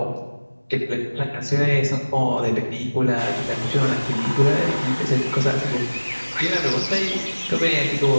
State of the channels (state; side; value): inverted; both; correlation -1.00